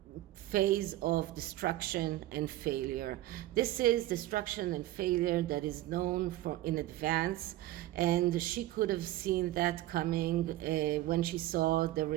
phase of destruction and failure. This is destruction and failure that is known for in advance, and she could have seen that coming when she saw the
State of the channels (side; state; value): left; quieter; 15.6 dB